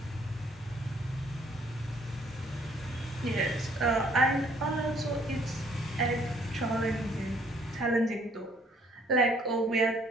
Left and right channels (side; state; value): both; normal; correlation 0.63